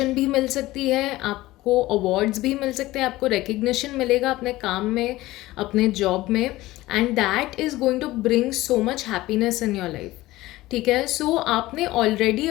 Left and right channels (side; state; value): right; quieter; 17.7 dB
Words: भी मिल सकती है, आपको अवार्ड्स भी मिल सकते हैं, आपको रिकग्निशन मिलेगा अपने काम में, अपने जॉब में, and that is going to bring so much happiness in your life, ठीक है। सो आपने ऑलरेडी